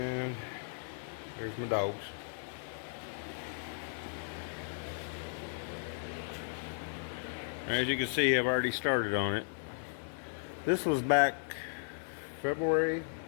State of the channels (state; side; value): silent; right; digital silence